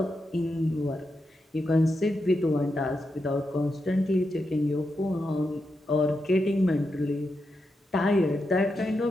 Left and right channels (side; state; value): both; normal; correlation 0.86